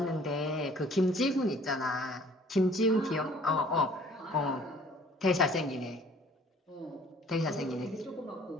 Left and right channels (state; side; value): normal; both; correlation 0.54